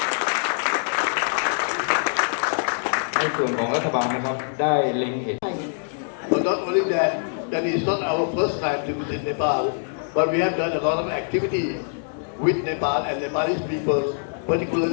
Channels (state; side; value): silent; right; digital silence